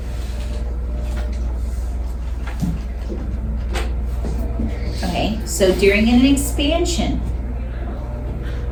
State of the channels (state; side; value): identical; both; correlation 1.00